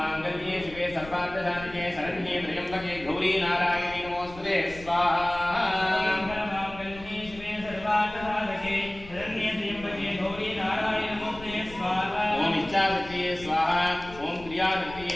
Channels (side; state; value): left; noise; rumble, 17 dB below the sound